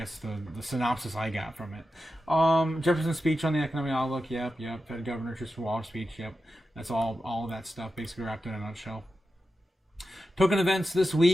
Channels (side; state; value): both; normal; correlation 0.91